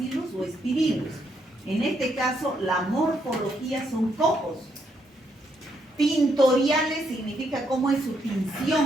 o espirilos. En este caso, la morfología son cocos. Tintoriales significa cómo es su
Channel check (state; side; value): normal; both; correlation 0.76